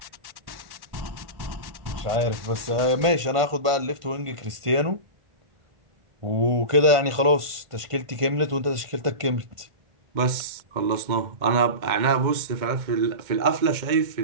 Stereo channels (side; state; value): left; late; 1.5 ms